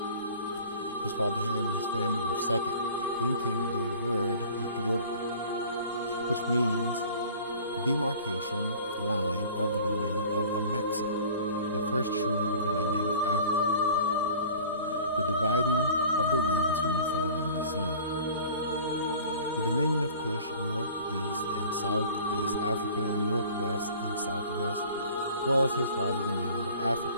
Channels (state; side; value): inverted; both; correlation -0.46